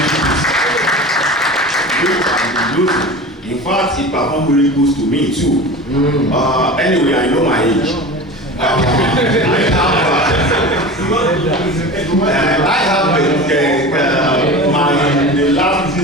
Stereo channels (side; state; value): both; normal; correlation 0.33